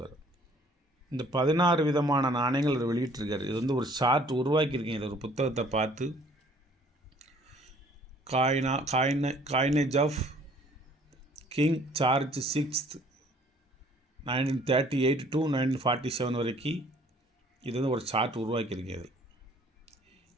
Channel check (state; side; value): normal; both; correlation 0.57